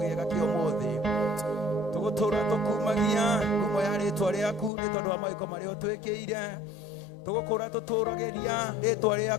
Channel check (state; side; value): drops out; right; at 4.7 s